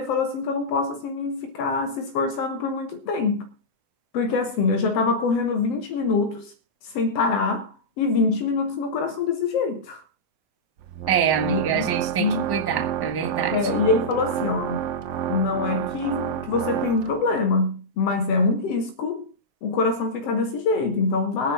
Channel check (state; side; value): late; right; 7.8 ms